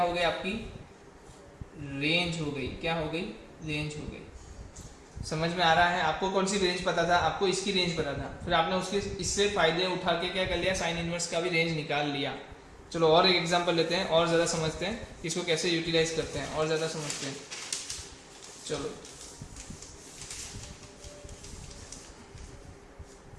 हो गई? आपकी रेंज हो गई। क्या हो गई? रेंज हो गई। समझ में आ रहा है? आपको कौन सी रेंज पता था? आपको इसकी रेंज पता था। फिर आपने उसके इससे फायदे उठा के क्या कर लिया? साइन इनवर्स का भी रेंज निकाल लिया। चलो और एक एग्जांपल लेते हैं और ज़्यादा समझते हैं इसको कैसे यूटिलाइज करते हैं, और ज़्यादा समझते हैं। चलो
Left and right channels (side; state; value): both; identical; correlation 1.00